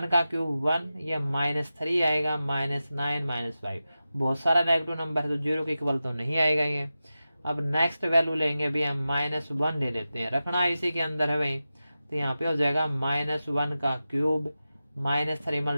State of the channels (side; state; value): both; inverted; correlation -0.93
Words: का क्यूब 1, ये -3 आएगा, -9 -5। बहुत सारा नेगेटिव नंबर है तो 0 के इक्वल तो नहीं आएगा ये। अब नेक्स्ट वैल्यू लेंगे भी हम, -1 ले लेते हैं, रखना इसी के अंदर है भाई। तो यहाँ पे हो जाएगा -1 का क्यूब -3